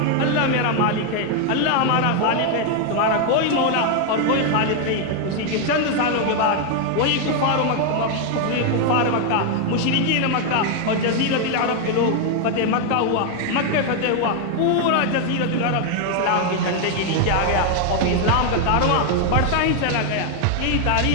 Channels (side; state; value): both; different; correlation 0.01